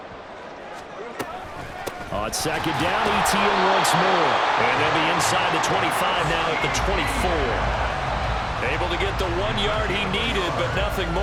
On second down, Etienne once more. And they'll be inside the 25 now at the 24. Able to get the 1 yard he needed, but nothing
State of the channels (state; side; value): identical; both; correlation 1.00